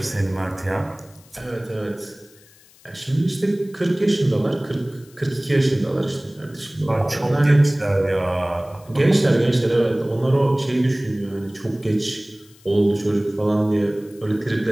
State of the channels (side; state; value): left; noise; hiss, 27 dB below the sound